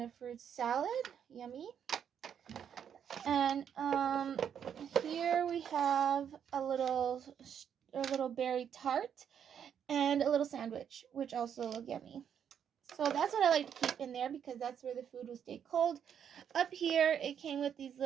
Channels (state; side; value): quieter; left; 8.4 dB